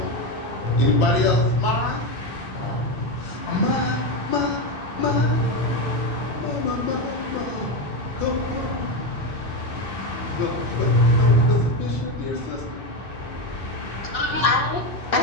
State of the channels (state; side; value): late; right; 2.6 ms